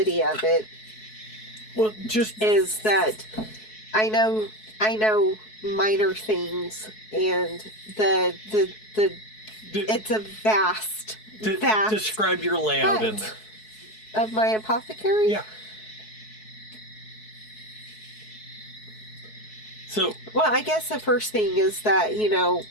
of it is that I know minor things, and it's a vast describe your layout in there of my apothecary. Yeah. So, well, I guess the first thing is that,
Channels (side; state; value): right; late; 4.6 ms